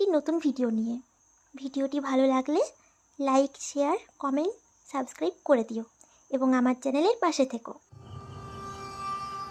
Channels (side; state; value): both; identical; correlation 1.00